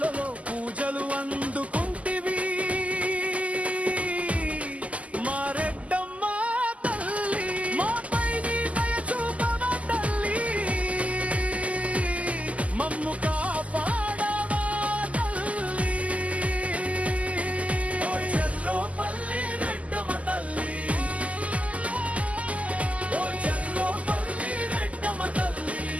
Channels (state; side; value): late; left; 0.069 ms